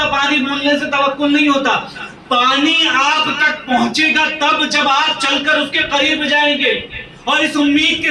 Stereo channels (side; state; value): both; identical; correlation 1.00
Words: پانی بولنے سے توکل نہیں ہوتا۔ پانی آپ تک پہنچے گا تب جب آپ چل کر اس کے قریب جائیں گے اور اس امید